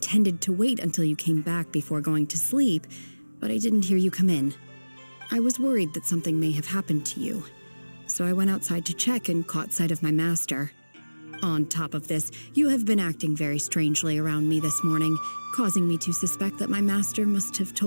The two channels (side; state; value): both; inverted; correlation -1.00